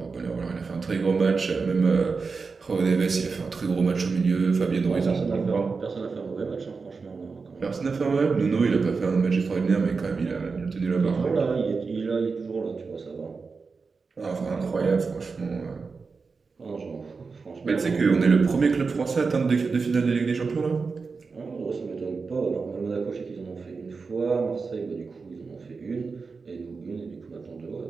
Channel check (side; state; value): left; quieter; 4.7 dB